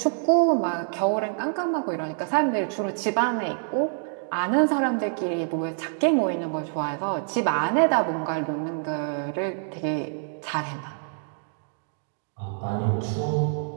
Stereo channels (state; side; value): silent; left; 60 dB below the other